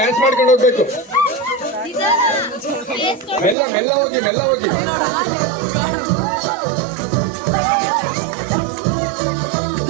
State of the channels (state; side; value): drops out; left; at 3.6 s